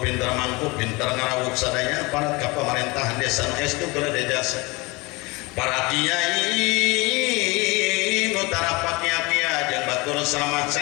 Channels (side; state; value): right; quieter; 24.9 dB